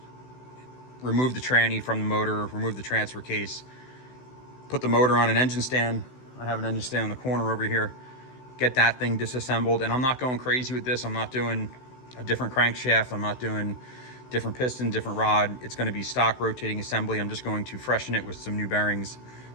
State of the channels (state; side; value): late; right; 16 ms